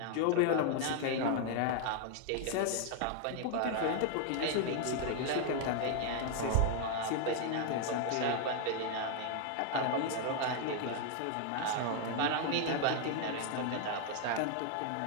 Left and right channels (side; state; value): both; different; correlation 0.00